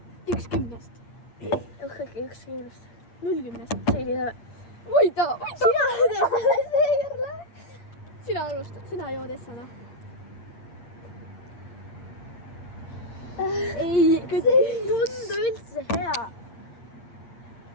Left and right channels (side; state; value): right; late; 8.6 ms